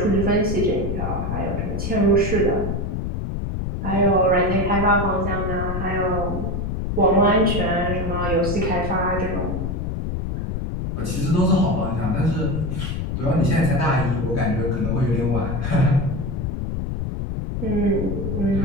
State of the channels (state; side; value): noise; left; rumble, 3 dB below the sound